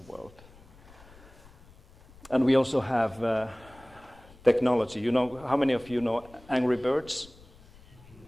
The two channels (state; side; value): noise; left; rumble, 24 dB below the sound